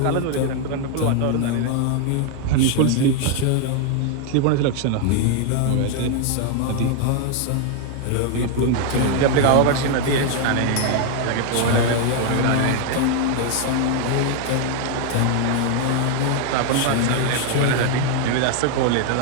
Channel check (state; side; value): different; both; correlation 0.00